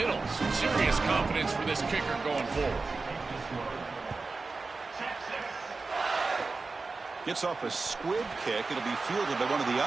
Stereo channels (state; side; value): quieter; left; 4.0 dB